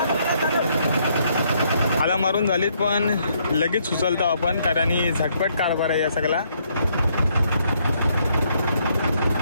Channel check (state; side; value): inverted; both; correlation -0.71